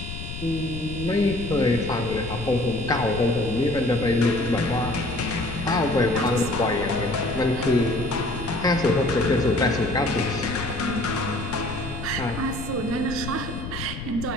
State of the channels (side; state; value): left; noise; rumble, 9 dB below the sound